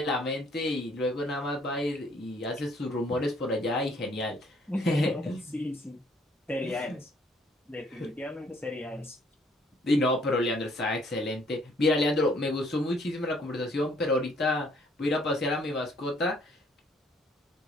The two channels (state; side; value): normal; both; correlation 0.64